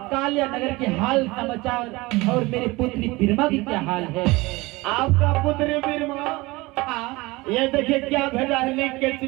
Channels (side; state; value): left; quieter; 22.1 dB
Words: कल्याण नगर के हाल समाचार और मेरे पुत्री बिरमा की क्या हाल है। आपका पुत्र बिरमा ये देखिए क्या भेजा है, लिख के